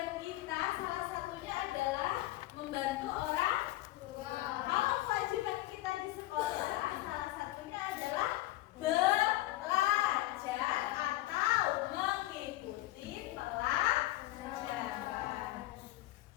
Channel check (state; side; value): quieter; right; 17.0 dB